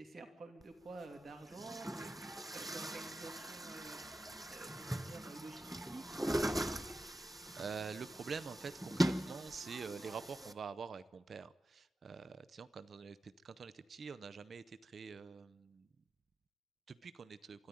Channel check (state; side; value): normal; both; correlation 0.91